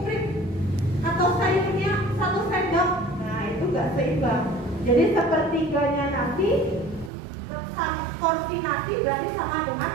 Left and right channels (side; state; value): left; drops out; at 7.1 s